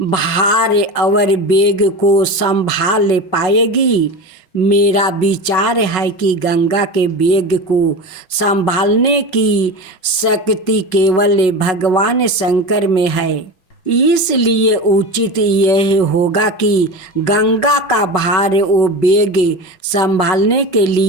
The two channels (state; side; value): late; right; 5.4 ms